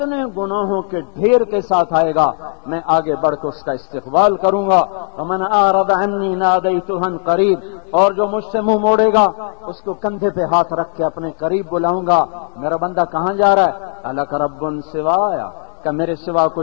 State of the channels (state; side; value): silent; right; digital silence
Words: گناہوں کے ڈھیر کے ساتھ آئے گا میں آگے بڑھ کے اس کا استقبال کروں گا۔ ومن اعرض عنی نادیتہ قریب، اور جو مجھ سے منہ موڑے گا اس کو کندھے پہ ہاتھ رکھ کے اپنے قریب بلاؤں گا۔ میرا بندہ کہاں جا رہا ہے؟ الک رب سوایا، کہ میرے سوا